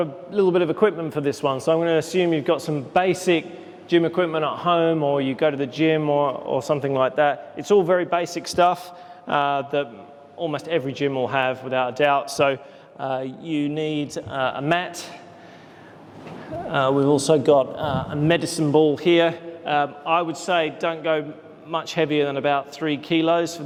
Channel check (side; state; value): both; identical; correlation 1.00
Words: a little bit of equipment for this one. So I'm going to assume you've got some basic gym equipment at home, or you go to the gym or something like that. It's all very basic stuff that almost every gym will have, without a doubt. So you need a mat. We've also got a medicine ball here. I would say don't go much heavier than about 3 kilos for